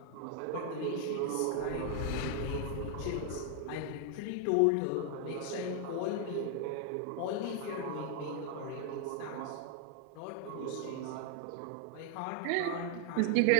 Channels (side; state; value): both; different; correlation 0.00